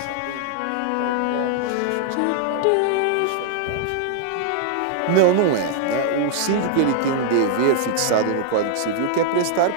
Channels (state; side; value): different; both; correlation -0.01